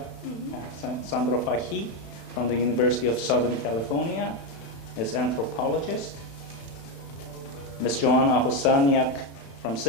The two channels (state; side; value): late; right; 36 ms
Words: Mm-hmm. Sandra Fahy from the University of Southern California is anthropologist. Ms. Joanna Hosaniak from